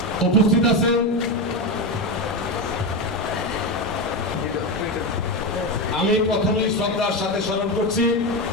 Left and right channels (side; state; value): both; normal; correlation 0.14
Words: উপস্থিত আছেন। আমি প্রথমেই শ্রদ্ধার সাথে স্মরণ করছি